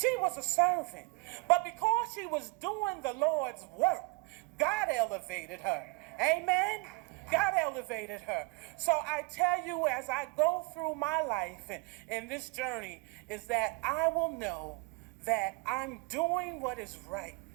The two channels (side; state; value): left; quieter; 25.5 dB